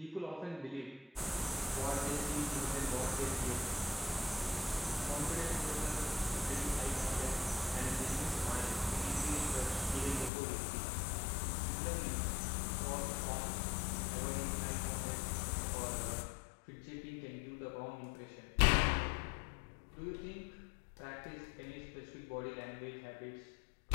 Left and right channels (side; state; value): right; drops out; at 10.3 s